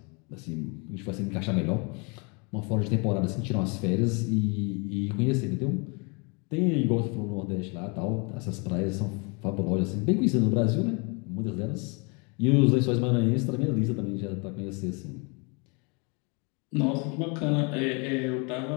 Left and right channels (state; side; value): quieter; right; 32.4 dB